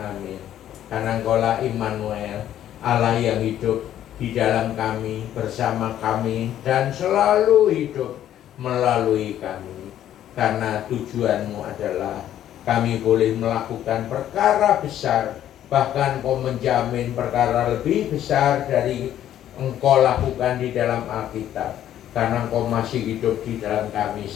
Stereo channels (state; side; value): quieter; right; 11.5 dB